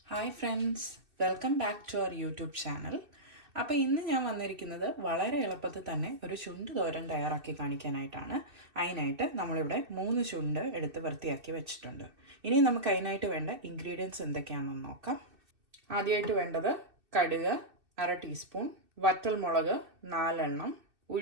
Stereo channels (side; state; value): left; late; 2.6 ms